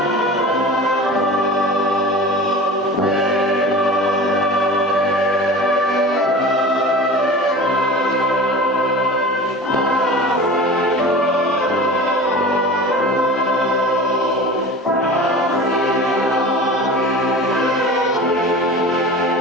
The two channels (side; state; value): both; normal; correlation 0.36